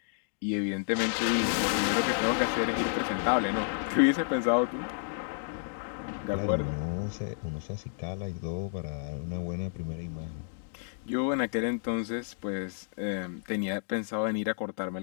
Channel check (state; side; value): silent; right; digital silence